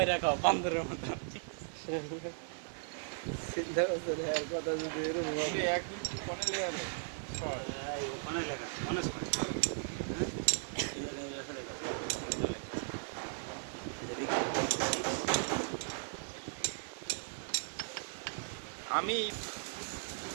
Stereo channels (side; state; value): left; silent; digital silence